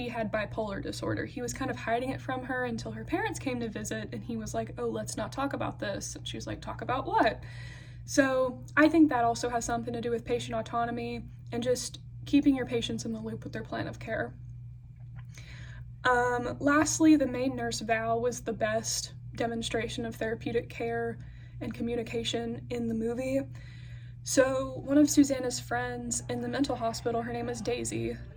had bipolar disorder. He was kind of hiding it from her until her parents came to visit, and he was like, oh, let's not talk about this. And she was like, talk about what? So I think that also has something to do with patient autonomy and just keeping your patients in the loop with their plan of care. Lastly, the main nurse, Val, was the best demonstration of therapeutic care and communication in the movie. So one of Susanna's friends in the mental hospital, her name was Daisy,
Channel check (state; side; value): identical; both; correlation 1.00